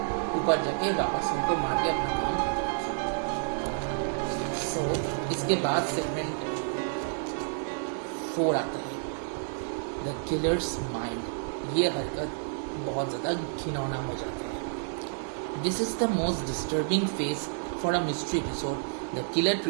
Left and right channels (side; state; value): left; silent; digital silence